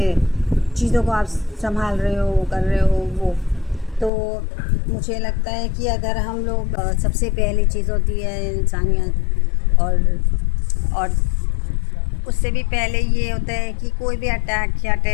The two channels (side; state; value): right; drops out; at 4.1 s